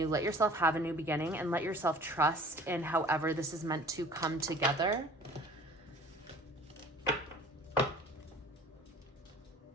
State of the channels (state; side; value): normal; both; correlation 0.47